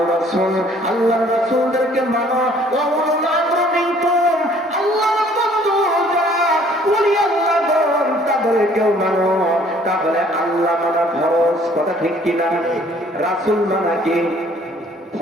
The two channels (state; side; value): normal; both; correlation 0.58